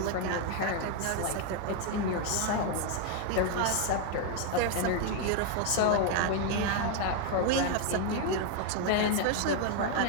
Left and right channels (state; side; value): different; both; correlation 0.01